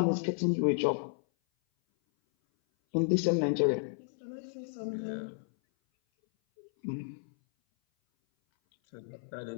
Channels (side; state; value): right; silent; 56 dB below the other